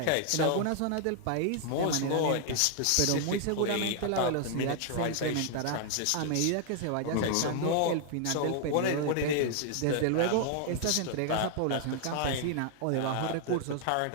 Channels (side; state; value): both; different; correlation 0.00